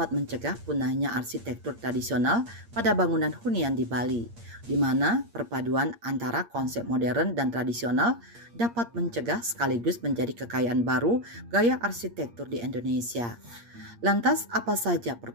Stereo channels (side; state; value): left; late; 8.6 ms